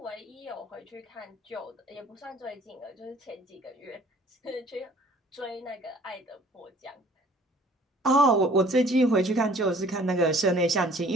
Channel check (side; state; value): both; normal; correlation 0.54